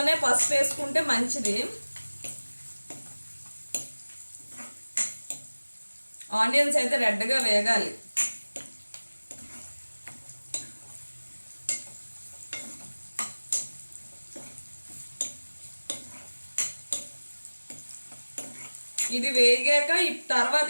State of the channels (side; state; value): both; inverted; correlation -1.00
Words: పసుపు వేసుకుంటే మంచిది. ఆనియన్స్ అయితే రెడ్గా వేగాలి. ఇది వేగాక తర్వాత